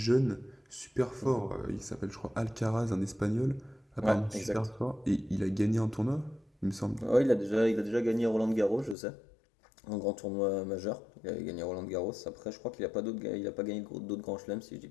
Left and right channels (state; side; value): drops out; right; at 9.0 s